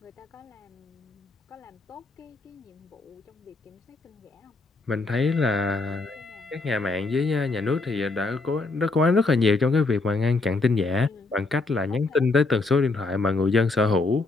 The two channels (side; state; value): right; quieter; 3.5 dB